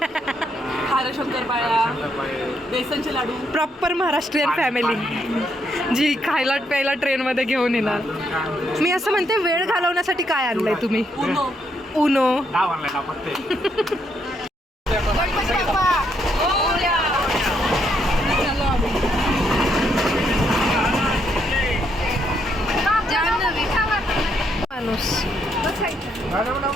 बेसनचे लाडू. प्रॉपर महाराष्ट्रीयन फॅमिली जी खायला प्यायला ट्रेनमध्ये घेऊन येणार. मी असं म्हणते, वेळ घालवण्यासाठी काय आणलंय तुम्ही? उनो. माणूस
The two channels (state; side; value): normal; both; correlation 0.75